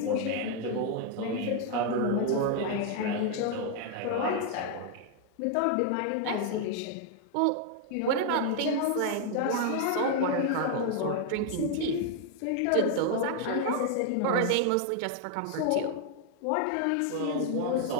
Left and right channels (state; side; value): different; both; correlation 0.00